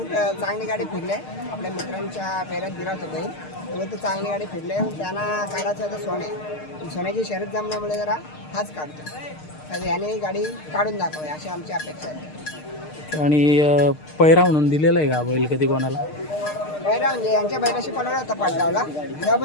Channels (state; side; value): late; right; 6.6 ms